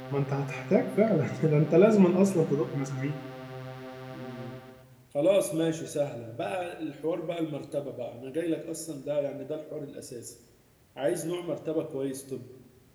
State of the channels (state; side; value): identical; both; correlation 1.00